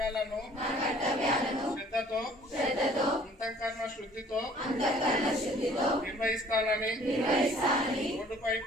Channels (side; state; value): both; normal; correlation 0.55